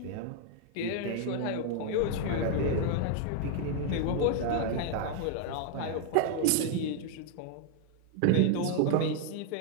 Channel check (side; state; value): both; different; correlation 0.00